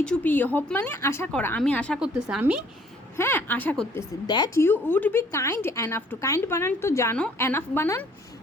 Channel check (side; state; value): both; normal; correlation 0.59